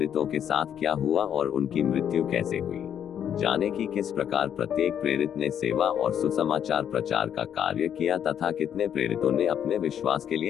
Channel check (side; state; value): right; quieter; 9.1 dB